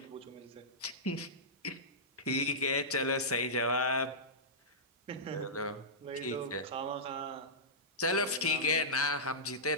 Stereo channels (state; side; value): normal; both; correlation -0.17